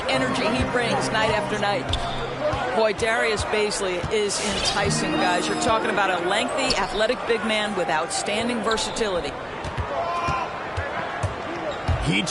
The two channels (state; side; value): identical; both; correlation 1.00